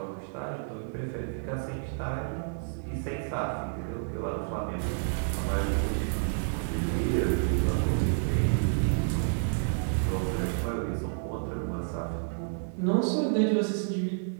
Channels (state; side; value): silent; left; digital silence